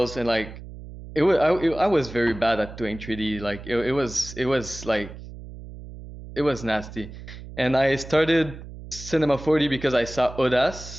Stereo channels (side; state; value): right; noise; hum, 14 dB below the sound